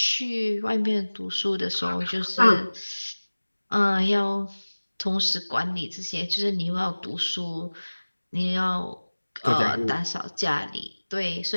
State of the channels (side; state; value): both; inverted; correlation -1.00